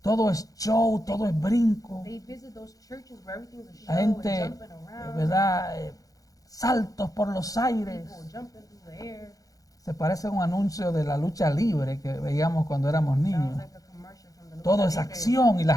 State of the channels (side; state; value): right; late; 0.17 ms